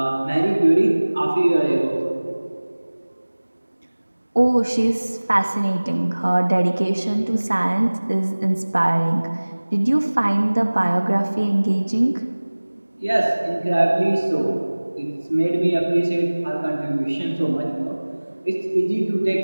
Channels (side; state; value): both; inverted; correlation -1.00